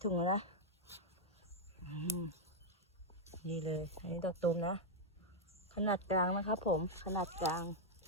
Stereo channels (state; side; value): normal; both; correlation -0.02